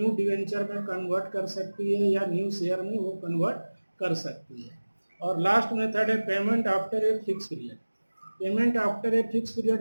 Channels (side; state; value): both; inverted; correlation -1.00